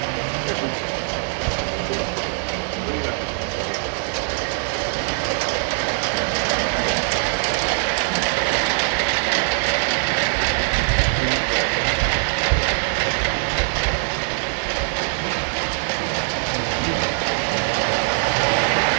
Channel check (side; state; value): left; silent; 64 dB below the other